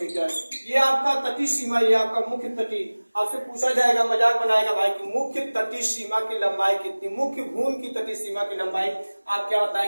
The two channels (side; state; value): both; inverted; correlation -1.00